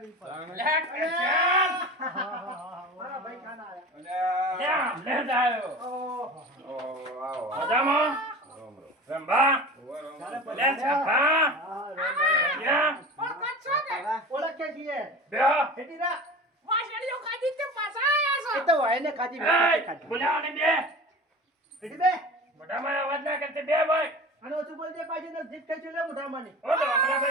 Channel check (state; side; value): normal; both; correlation 0.35